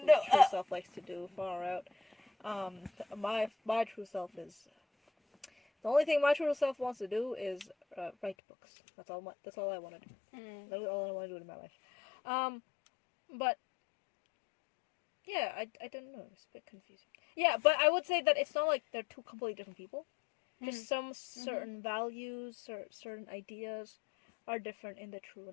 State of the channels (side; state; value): right; drops out; at 8.3 s